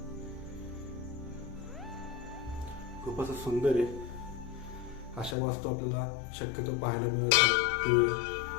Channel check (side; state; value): right; drops out; at 5.4 s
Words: खूप असं सुंदर आहे. अशा वास्तू आपल्याला शक्यतो पाहायला मिळत नाही. हे